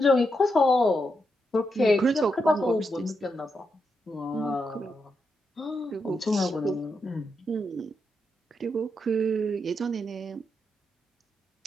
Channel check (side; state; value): both; normal; correlation 0.83